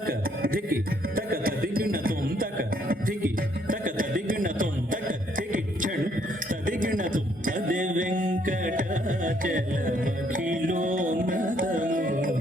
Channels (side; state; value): both; normal; correlation 0.68